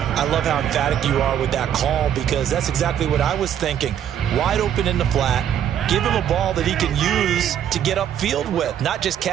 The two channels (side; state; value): left; quieter; 9.8 dB